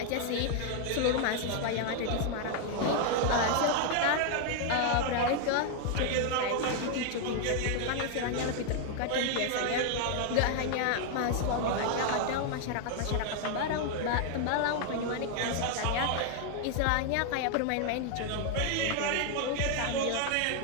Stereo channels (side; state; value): both; different; correlation 0.00